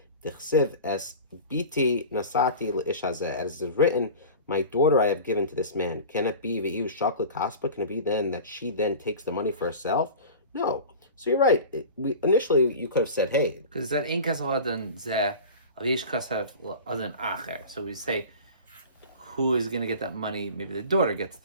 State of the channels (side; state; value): both; inverted; correlation -0.35